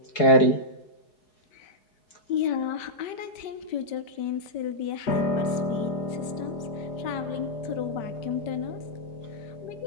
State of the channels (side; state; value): right; late; 5.2 ms